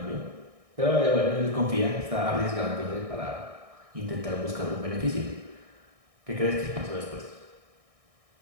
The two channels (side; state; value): left; late; 1.6 ms